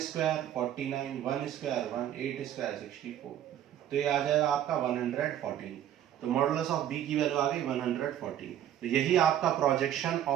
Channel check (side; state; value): left; quieter; 11.1 dB